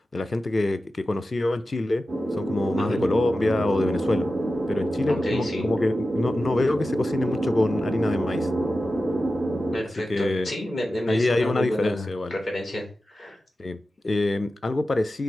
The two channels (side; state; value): both; normal; correlation 0.93